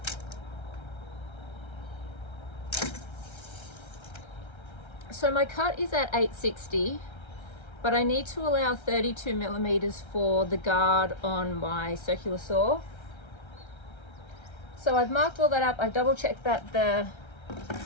So my cut is at 860, but I need to allow 32 millimeters for the guard on my circular saw. So I've marked all that up. I've double checked that the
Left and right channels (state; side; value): late; right; 1.3 ms